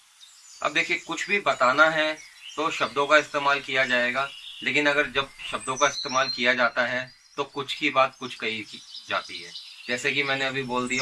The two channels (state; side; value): identical; both; correlation 1.00